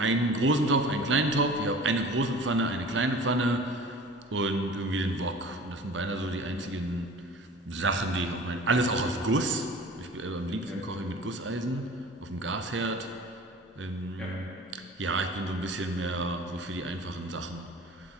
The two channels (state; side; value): normal; both; correlation 0.42